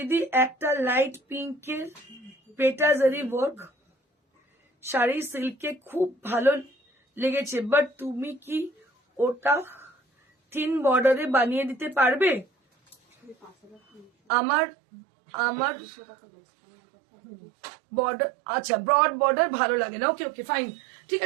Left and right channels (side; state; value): left; drops out; at 14.1 s